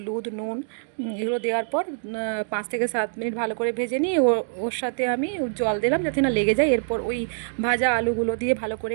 নুন, এগুলো দেওয়ার পর 5 থেকে 7 মিনিট ভালো করে ভেজে নিয়ে ওর সাথে আমি জল দিলাম যাতে না লেগে যায়। এরপর ওই ভাজা আলুগুলো দিয়ে ভালো করে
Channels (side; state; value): left; silent; digital silence